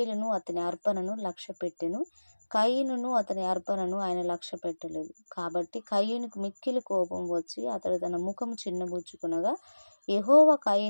అతని అర్పణను లక్ష్యపెట్టెను, కయీనును అతని అర్పణను ఆయన లక్ష్యపెట్టలేదు. కాబట్టి కయీనుకు మిక్కిలి కోపం వచ్చి అతడు తన ముఖము చిన్నబుచ్చుకొనగా, యెహోవా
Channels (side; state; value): both; inverted; correlation -1.00